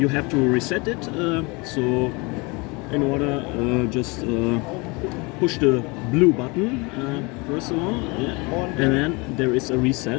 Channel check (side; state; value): right; quieter; 27.3 dB